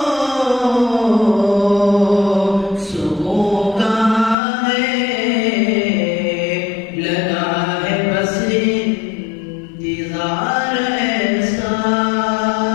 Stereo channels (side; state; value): right; drops out; at 4.4 s